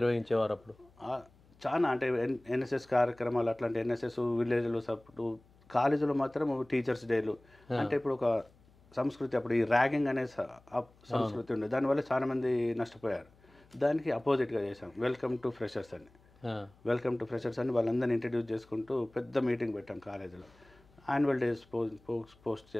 అప్పుడు? చాలా అంటే ఎన్ఎస్ఎస్ కార్యక్రమాలు, అట్లాంటి ఎన్ఎస్ఎస్ విలేజ్లో సపోర్టు, కాలేజీలో మాత్రం టీచర్స్ డేలు. అంటే ఇప్పుడు ఒక సంస్కృతి, అప్పుడు ఈ ర్యాగింగ్ అనే సంస్కృతి ఉండేది, దానివల్ల చాలామంది నష్టపోయారు. దానికి అపోజిట్గా చేశాం వెల్కమ్ టు ఫ్రెషర్స్ అని. వెల్కమ్ టు ఫ్రెషర్స్ అని వాళ్ళందరినీ ఇంట్రడ్యూస్ చేసుకుంటూ పెద్ద మీటింగ్ పెట్టాం కాలేజీలో. యాన్యువల్ డేస్ పోస్ట్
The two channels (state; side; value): noise; left; hum, 29 dB below the sound